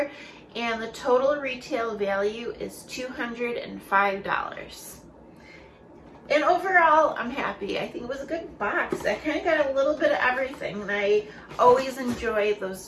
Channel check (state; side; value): identical; both; correlation 1.00